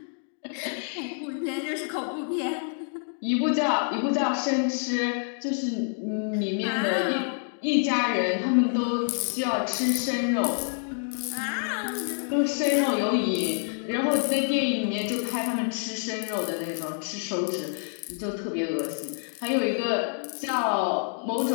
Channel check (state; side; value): silent; right; 60 dB below the other